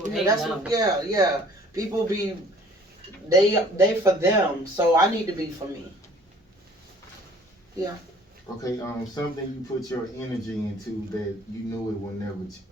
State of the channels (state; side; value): normal; both; correlation 0.53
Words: hate love. Yeah. People be, they for them, so I need to be for me. Yeah. Okay, something you put your energy into that you knew it would never,